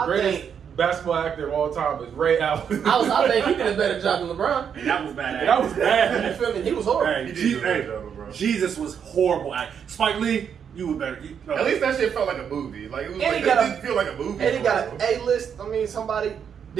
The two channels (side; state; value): left; quieter; 7.7 dB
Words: greatest think basketball actor of all time is Ray Allen. I think he did a better job than LeBron. And that was bad. That was You bad. feel me? He was horrible. Hey, He did do a better job, bro. Jesus was horrible acting. Spike Lee, you were better. At least that shit felt like a movie. Like, it was And like, he got it a- didn't feel like a movie. And he got an A-list. I mean, somebody.